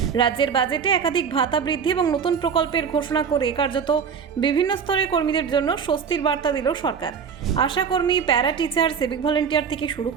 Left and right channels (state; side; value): quieter; left; 6.7 dB